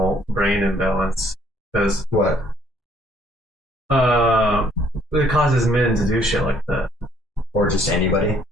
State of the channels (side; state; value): both; normal; correlation 0.63